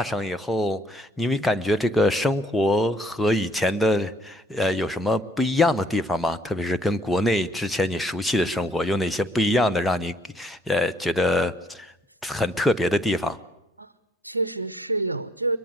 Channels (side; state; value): both; normal; correlation 0.65